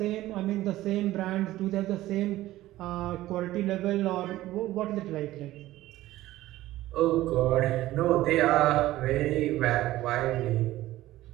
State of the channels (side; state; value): left; quieter; 15.8 dB